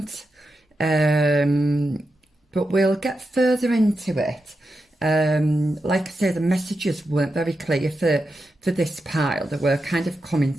but we'll get further into it. Like I say, the messages weren't very clear for this pile. They were kind of coming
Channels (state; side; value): normal; both; correlation 0.88